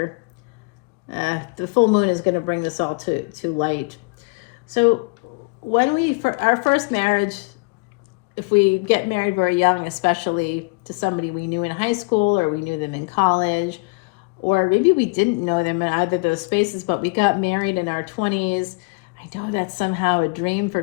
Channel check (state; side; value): quieter; right; 30.2 dB